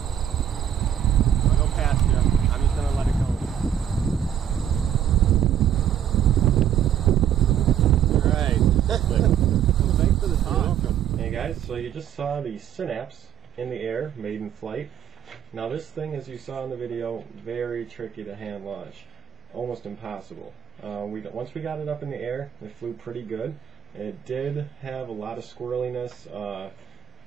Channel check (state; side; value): quieter; left; 9.5 dB